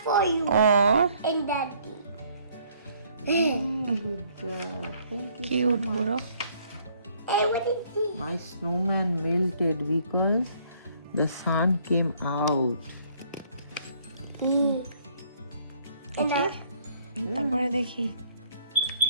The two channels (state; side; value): inverted; both; correlation -0.64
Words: for you ও and daddy. কিউট পুরো। Hey, what is this? My snowman melted because the sun came out. দেখি তারপরে দেখি।